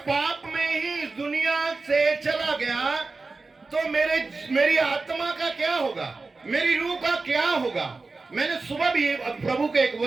पाप में ही इस दुनिया से चला गया, तो मेरी आत्मा का क्या होगा, मेरी रूह का क्या होगा? मैंने सुबह भी प्रभु के एक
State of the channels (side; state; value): left; quieter; 3.8 dB